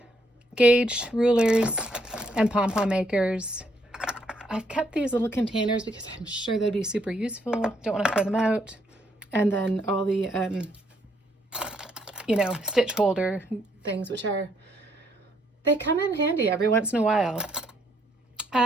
Gauge rulers and pom-pom makers. I've kept these little containers because I'm sure they'd be super useful. Don't want to throw them out. And then all the, you know, stitch holder things, which they come in handy every once in a while.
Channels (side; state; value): both; normal; correlation 0.71